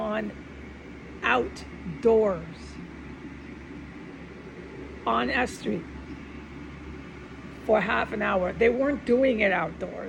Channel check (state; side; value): identical; both; correlation 1.00